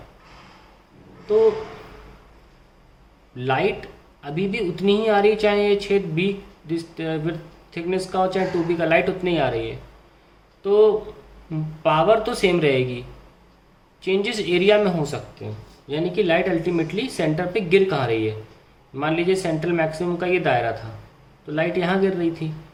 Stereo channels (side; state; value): both; identical; correlation 1.00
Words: तो लाइट अभी भी उतनी ही आ रही है, चाहे ये छेद बी विथ थिकनेस का हो चाहे 2b का, लाइट उतनी ही आ रही है। तो पावर तो सेम रहेगी, चेंजेस एरिया में हो सकते हैं। यानी कि लाइट अल्टीमेटली सेंटर पे गिर कहाँ रही है। मान लीजिए सेंट्रल मैक्सिमम का ये दायरा था, तो लाइट यहाँ गिर रही थी,